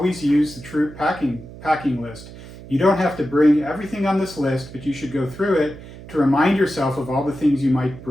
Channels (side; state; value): right; noise; hum, 16 dB below the sound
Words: use the troop packing list. You don't have to bring everything on this list, but you should go through it to remind yourself of all the things you might